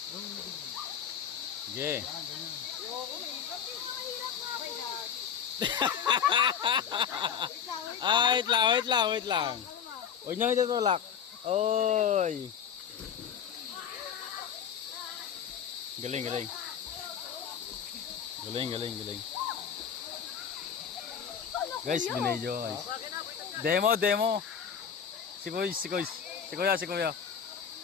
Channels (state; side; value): quieter; right; 7.8 dB